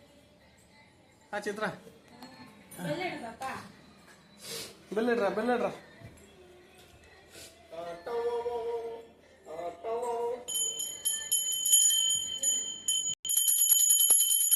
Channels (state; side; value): identical; both; correlation 1.00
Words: சித்ரா பெல்லிடுறா பெல்லிடுறா.